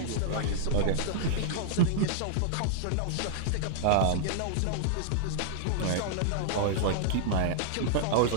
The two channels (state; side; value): different; both; correlation -0.01